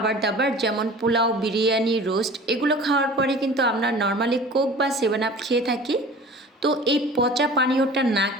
দাবার যেমন পোলাও, বিরিয়ানি, রোস্ট এগুলো খাওয়ার পরে কিন্তু আমরা নর্মালি কোক বা 7 আপ খেয়ে থাকি। তো এই পচা পানীয়টা না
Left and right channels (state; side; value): normal; both; correlation 0.42